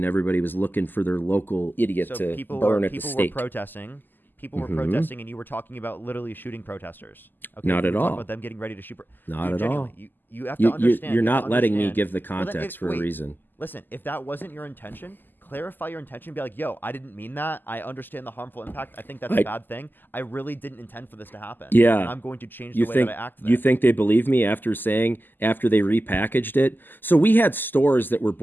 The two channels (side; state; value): right; late; 0.090 ms